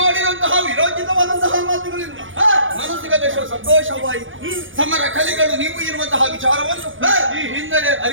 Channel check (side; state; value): left; late; 0.57 ms